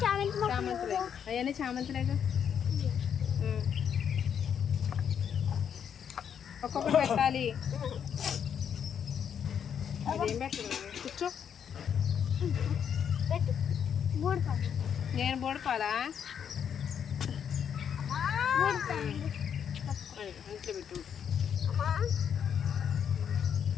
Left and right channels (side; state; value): right; quieter; 8.1 dB